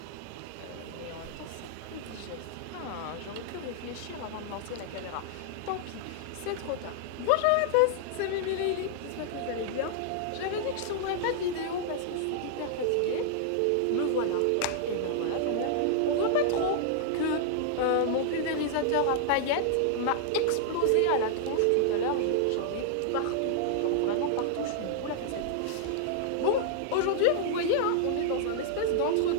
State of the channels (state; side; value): different; both; correlation -0.01